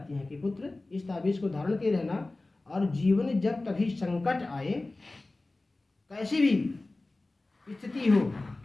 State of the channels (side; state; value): right; quieter; 3.0 dB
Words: हैं कि पुत्र इस ताबीज को धारण किए रहना, और जीवन में जब कभी संकट आए, कैसी भी स्थिति हो,